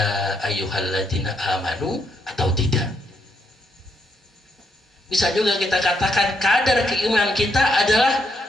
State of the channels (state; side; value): normal; both; correlation 0.77